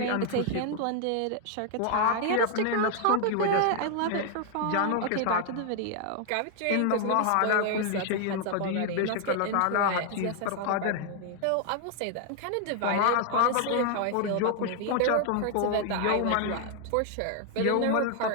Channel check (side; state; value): both; different; correlation 0.00